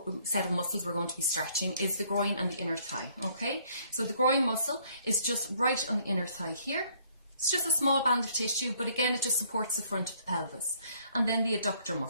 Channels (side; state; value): both; inverted; correlation -0.63